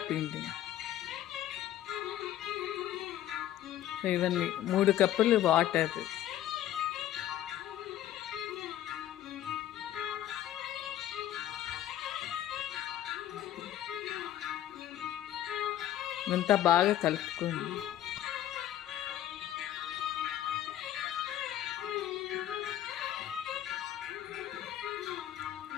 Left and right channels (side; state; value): right; quieter; 12.3 dB